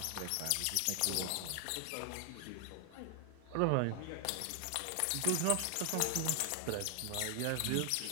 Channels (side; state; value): both; different; correlation 0.00